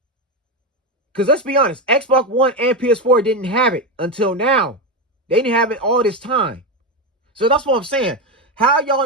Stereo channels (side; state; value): both; normal; correlation 0.12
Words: because let's be honest, Xbox One and PS4 didn't have it until now. They didn't have it all this time. So that's what I'm saying. How